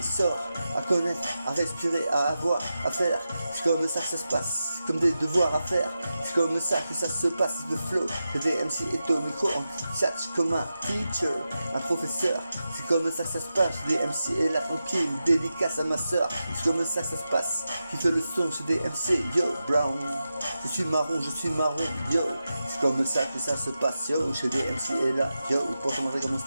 sorts. À connaître, à respirer, à avoir, à faire. C'est comme ça que ça se passe, comme des devoirs à faire. C'est comme ça que ça se passe, le flow. Le DMC est au micro, en chat comme un teacher, un professeur. C'est comme ça que ça se passe, le DMC est là tranquille, dédicace à ma soeur. C'est comme ça que ça se passe, qui fait le son chez DMC, yo, Brown. Je suis marron, yo. C'est comme ça que ça se passe, yo. Chez DMC est là, yo. Pour te montrer comment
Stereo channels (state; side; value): inverted; both; correlation -0.91